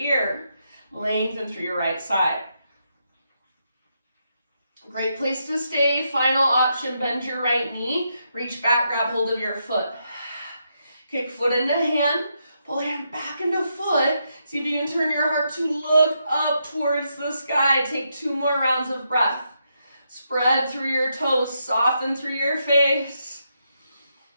Lengthen through your right side. Great place to stay. Final option, bend your right knee, reach back, grab hold of your foot. Kick foot into hand, pull hand back into foot. See if you can turn your heart to look up towards the sky. Take 2 more rounds of breath. Spread through your toes, soften through your face.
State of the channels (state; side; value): inverted; both; correlation -0.81